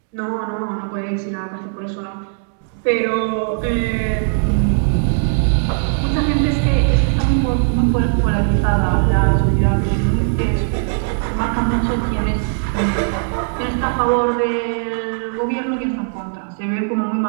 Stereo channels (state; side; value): silent; left; digital silence